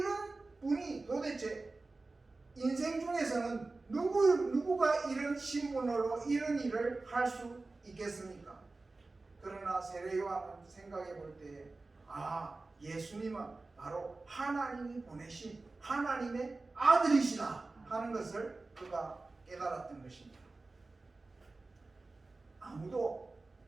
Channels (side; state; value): left; quieter; 3.4 dB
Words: 분이 도대체 인생 중에서는 누구가 이런 신분으로 이런 일을 할 수 있겠습니까? 그러나 세례 요한은 생각해 볼 때, 예수님은 바로 하나님이 보내신 하나님의 아들이시다 하는 것을 그가 깨달았던 것입니다. 아무도